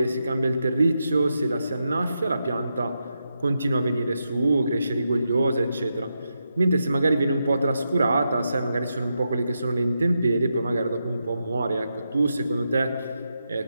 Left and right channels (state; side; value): inverted; both; correlation -0.86